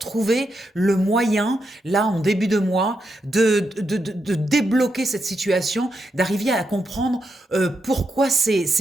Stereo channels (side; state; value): both; normal; correlation 0.83